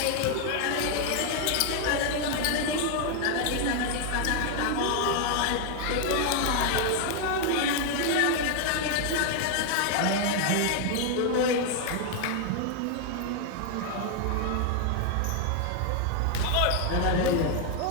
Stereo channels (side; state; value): both; different; correlation 0.00